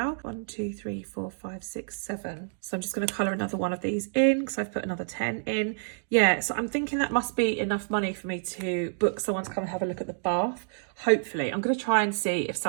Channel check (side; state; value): left; silent; digital silence